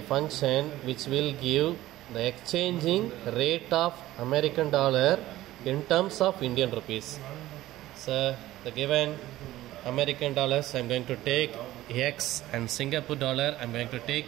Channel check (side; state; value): left; quieter; 15.7 dB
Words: function which will give the exchanging rate of American dollar in terms of Indian rupees. So the given American dollars I am going to take x and Singapore dollar I am going to take